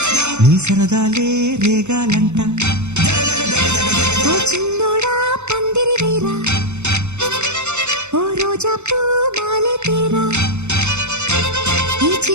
నీ సరదాలే రేగాలంట ఓ చిన్నోడా పందిరి వేరా ఓ రోజా పూ మాలే తేరా ఈ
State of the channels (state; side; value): late; left; 0.82 ms